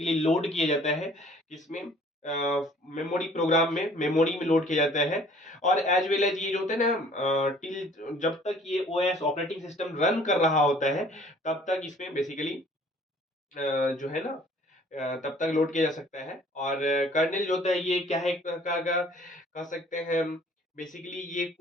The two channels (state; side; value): normal; both; correlation 0.54